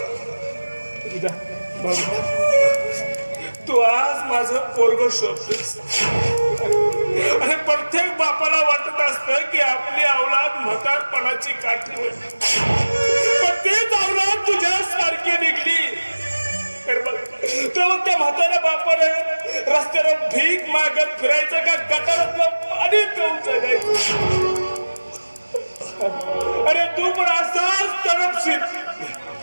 तू आज माझं पोरग शोधतोस. आणि प्रत्येक बापाला वाटत असतं की आपली अवलाद म्हातारपणाची काठी होईल. पण तीच अवलाद तुझ्या सारखी निघली तर त्या म्हाताऱ्या बापाने रस्त्यावर भीक मागत फिरायचं का गटारातलं पाणी पिऊन जगायचं. अरे तू पण असाच तडपशील.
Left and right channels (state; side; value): inverted; both; correlation -1.00